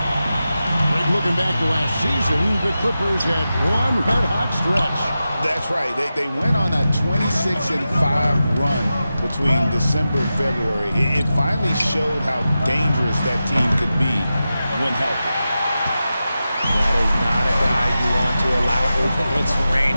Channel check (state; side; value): inverted; both; correlation -0.92